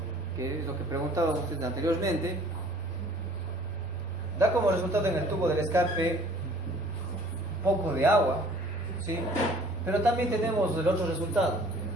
que es lo que preguntaban ustedes anteriormente, da como resultado en el tubo del escape un poco de agua, ¿sí? Pero también tenemos el otro resultado,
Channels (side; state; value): both; normal; correlation 0.53